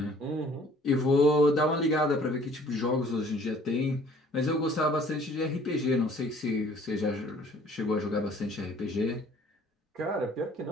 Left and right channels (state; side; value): normal; both; correlation 0.55